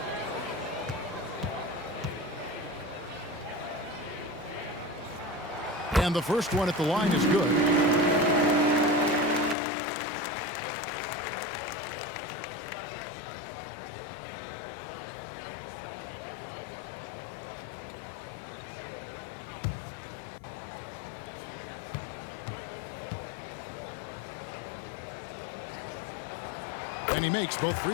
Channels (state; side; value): drops out; right; at 9.6 s